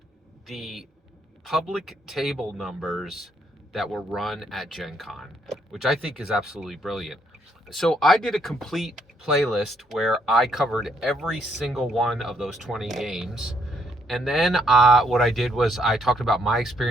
the public table numbers that were run at GenCon, which I think is absolutely brilliant. So I did a complete playlist where I covered every single one of those 20 games. And then what I did was I talked about my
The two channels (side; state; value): both; normal; correlation 0.73